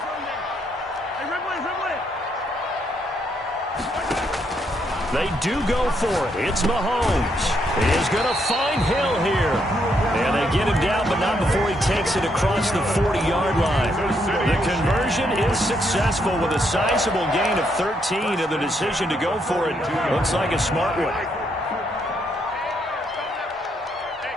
They do go for it. It's Mahomes. He is going to find Hill here. And they get him down, but not before he takes it across the 40-yard line. The conversion is successful with a sizable gain of 13, and the decision to go for it looks like a smart one.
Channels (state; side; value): normal; both; correlation 0.75